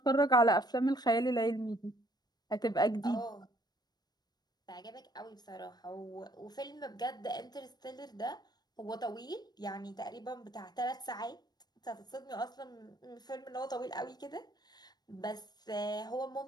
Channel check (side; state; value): right; late; 0.19 ms